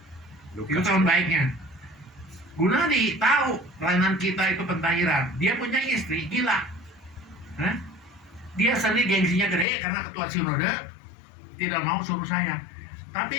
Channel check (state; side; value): drops out; right; at 9.7 s